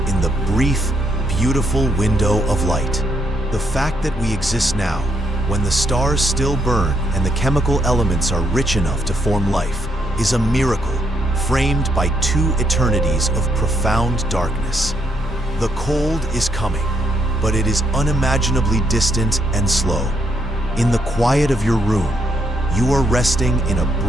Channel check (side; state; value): both; normal; correlation 0.76